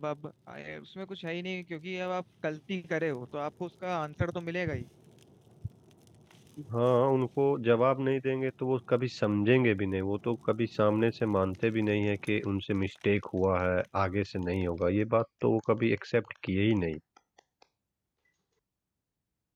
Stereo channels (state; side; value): identical; both; correlation 1.00